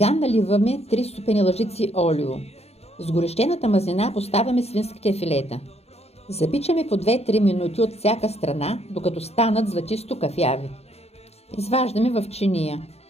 наливаме 3 супени лъжици олио. С горещената мазнина поставяме свинските филета. Запичаме по 2-3 минути от всяка страна, докато станат златисто кафяви. Изваждаме в чиния.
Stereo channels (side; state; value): right; late; 0.30 ms